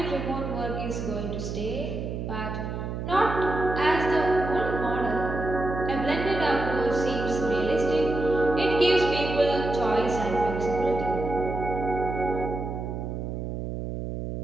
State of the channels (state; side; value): noise; right; hum, 5 dB below the sound